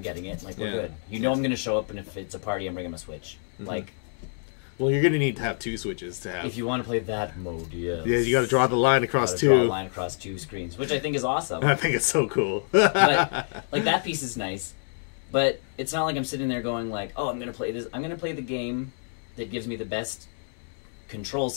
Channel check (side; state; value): right; silent; digital silence